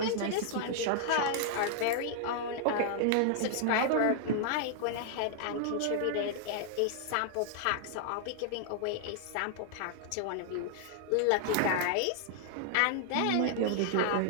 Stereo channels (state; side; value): different; both; correlation 0.00